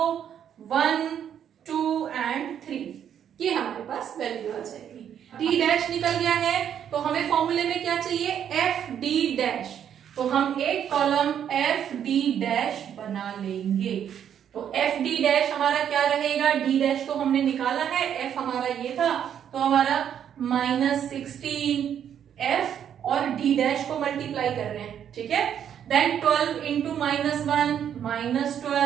1 2 एंड 3, ये हमारे पास वैल्यू आ जाएगी। D' निकल गया है, तो हमें फॉर्मूले में क्या चाहिए? FD', तो हम एक कॉलम FD' बना लेंगे। तो FD' हमारा क्या रहेगा? D' तो हमने निकाला है, F हमारा ये था, तो हमारा -16 F और D' को मल्टीप्लाई कर रहे हैं। ठीक है, then 12 into -1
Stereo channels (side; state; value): left; quieter; 9.2 dB